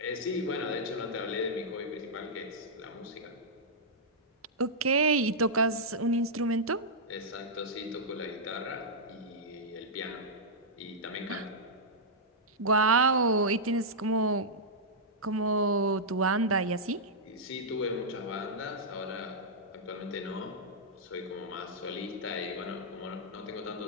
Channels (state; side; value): normal; both; correlation -0.10